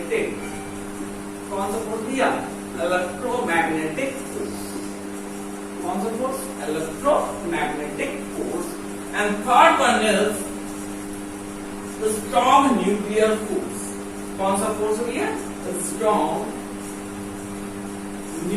कौन सा फोर्स दिया? Electromagnetic force. कौन सा force? Electromagnetic force. And third one is strong nuclear force. कौन सा फोर्स हो गया? Strong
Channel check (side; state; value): both; identical; correlation 1.00